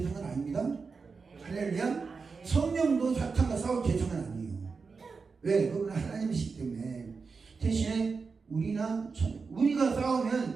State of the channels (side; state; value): left; quieter; 4.8 dB